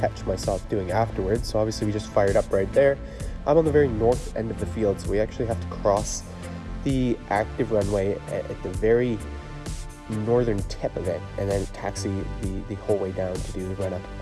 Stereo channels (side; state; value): both; identical; correlation 1.00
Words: myself doing afterwards. So obviously we just fired up right there. I'm on the very north end of the field, so we actually have to cross the active runway at the very northern tip of it, and then taxi the whole way down to do the run up